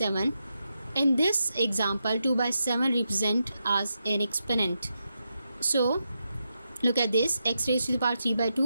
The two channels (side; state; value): both; inverted; correlation -0.86